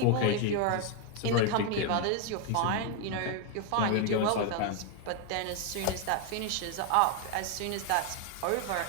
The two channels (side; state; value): both; different; correlation 0.01